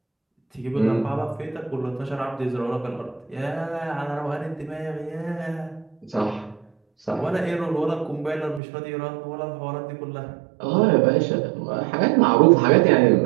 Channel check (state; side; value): drops out; left; at 8.6 s